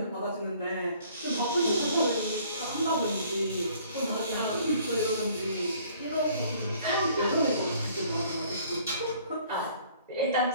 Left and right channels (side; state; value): both; inverted; correlation -0.57